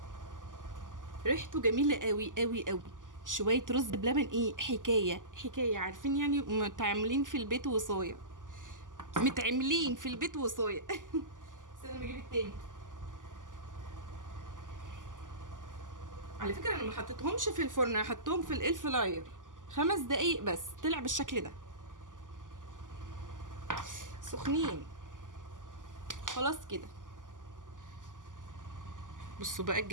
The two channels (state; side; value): late; left; 0.88 ms